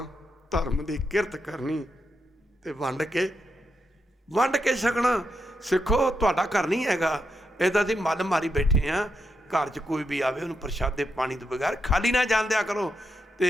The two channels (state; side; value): normal; both; correlation 0.83